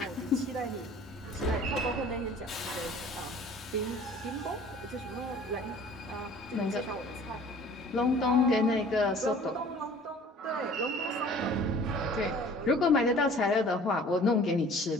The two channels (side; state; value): both; normal; correlation 0.49